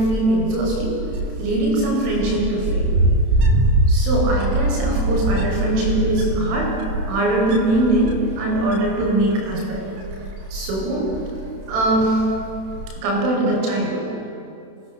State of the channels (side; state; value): left; late; 31 ms